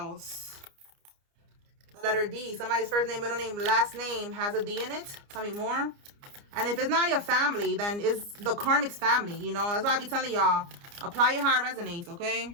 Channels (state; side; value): late; left; 29 ms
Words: The letter D. Somebody's first name, middle name, last name has a D in it. Tell me more. And if it's not your family, then it's the karmic's family. You know, that's why I be telling y'all, apply it how it resonates. Okay.